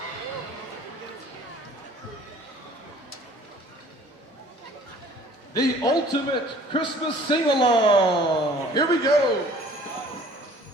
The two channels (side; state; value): both; normal; correlation 0.52